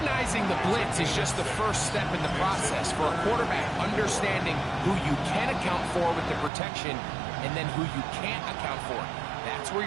the blitz is just the first step in the process for a quarterback, understanding who you can account for with the protection and then who you can't account for. That's where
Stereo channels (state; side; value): drops out; left; at 6.5 s